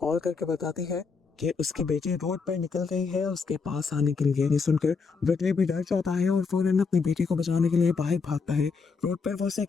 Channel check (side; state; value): right; quieter; 5.0 dB